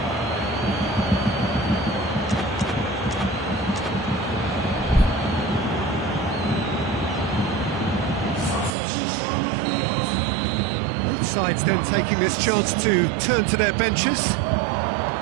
Sides then taking this chance to turn to their benches.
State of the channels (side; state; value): left; drops out; at 8.8 s